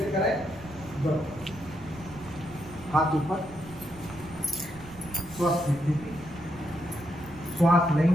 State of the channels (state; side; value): noise; right; rumble, 18 dB below the sound